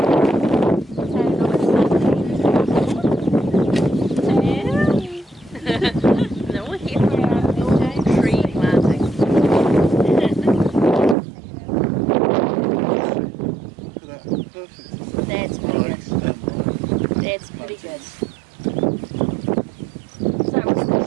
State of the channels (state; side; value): drops out; left; at 11.2 s